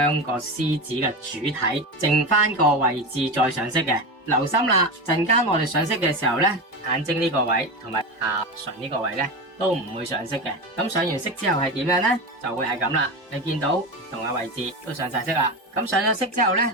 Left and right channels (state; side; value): normal; both; correlation 0.21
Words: 個獅子嘅主體剩翻個位置再上色嘅。留心啦，陣間我哋上色嘅時候呢，眼睛呢個位同埋下唇呢個位呢，都唔會上色嘅。咁上完色之後係點樣呢？就會係咁啦。你見到唔同嘅位置都上晒色啦。咁上咗色之後呢，